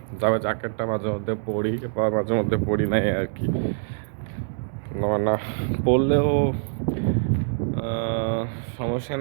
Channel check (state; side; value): silent; left; digital silence